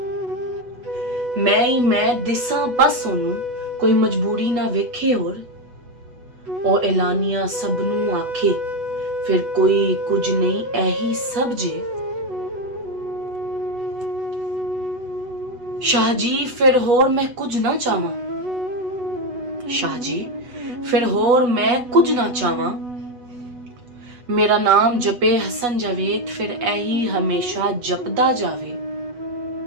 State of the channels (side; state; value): left; late; 8.1 ms